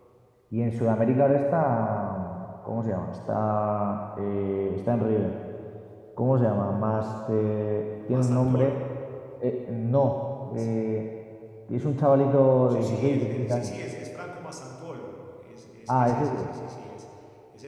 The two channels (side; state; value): both; identical; correlation 1.00